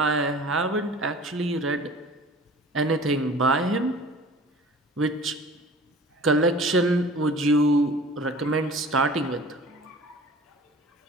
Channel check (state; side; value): normal; both; correlation 0.44